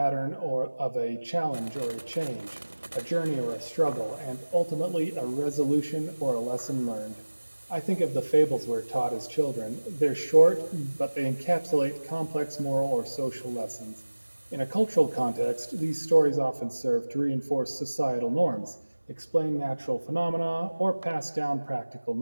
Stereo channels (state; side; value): inverted; both; correlation -1.00